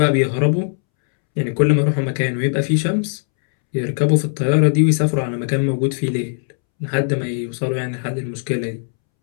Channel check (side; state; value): right; silent; 67 dB below the other